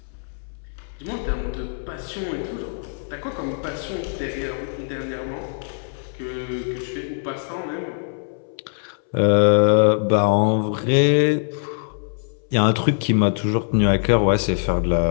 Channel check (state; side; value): silent; right; 64 dB below the other